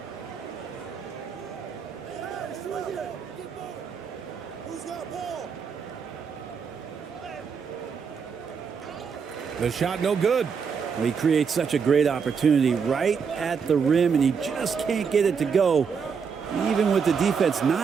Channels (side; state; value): left; quieter; 6.2 dB